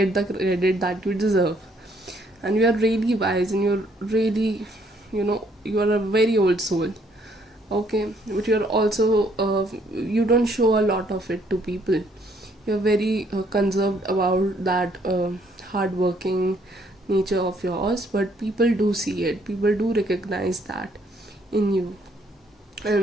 the credit that you deserve. And you are really wise, and you're really, you are a very old soul. Okay, but you're also you don't show a lot of it to people. You're very conserved about that hardworking nature of yours, but people do see it. People do recognize that in you,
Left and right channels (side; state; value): both; normal; correlation 0.67